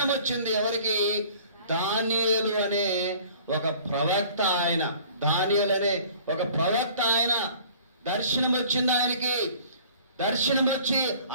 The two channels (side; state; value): both; inverted; correlation -0.50